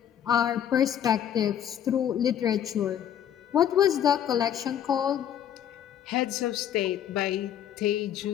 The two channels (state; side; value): quieter; right; 9.9 dB